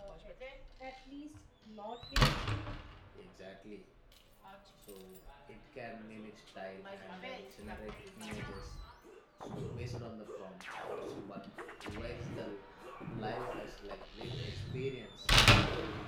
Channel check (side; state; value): both; identical; correlation 1.00